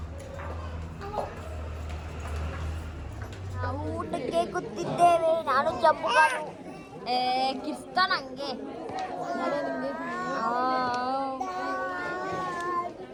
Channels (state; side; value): identical; both; correlation 1.00